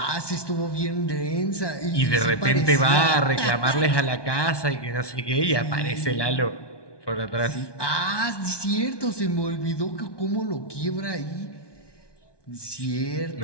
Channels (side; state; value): right; late; 1.2 ms